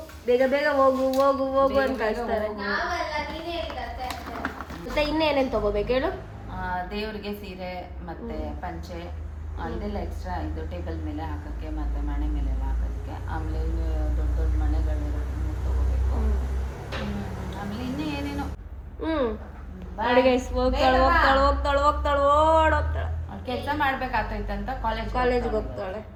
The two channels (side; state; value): both; identical; correlation 1.00